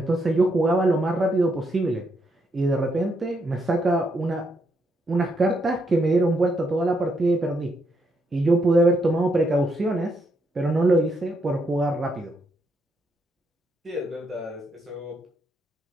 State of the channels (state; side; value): normal; both; correlation 0.77